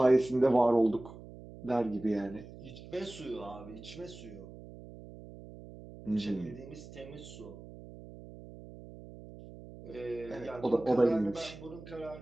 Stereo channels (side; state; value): right; noise; hum, 16 dB below the sound